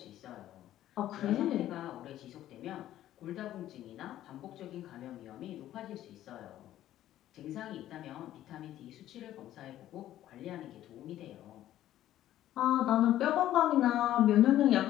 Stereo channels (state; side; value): quieter; right; 13.0 dB